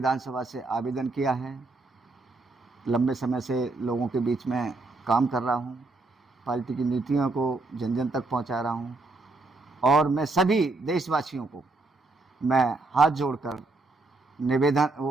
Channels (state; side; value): quieter; left; 3.4 dB